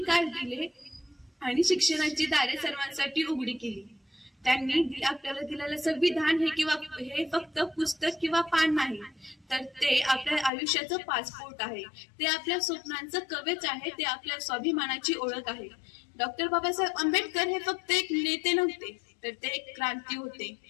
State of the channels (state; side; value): drops out; right; at 10.5 s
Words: दिले आणि शिक्षणाची दारे सर्वांसाठी उघडी केली. त्यांनी आपल्याला दिलेलं संविधान हे फक्त पुस्तक किंवा पान नाही, तर ते आपल्या आयुष्याचं पासपोर्ट आहे. ते आपल्या स्वप्नांचं कवच आहे. ते आपल्या स्वाभिमानाची ओळख आहे. डॉक्टर बाबासाहेब आंबेडकर हे फक्त एक नेते नव्हते, तर ते एक क्रांती होते.